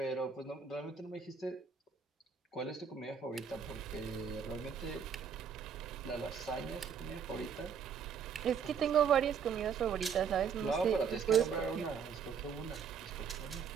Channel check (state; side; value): quieter; left; 6.8 dB